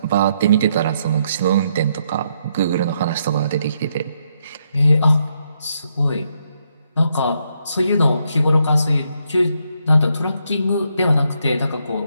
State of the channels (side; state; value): both; inverted; correlation -0.77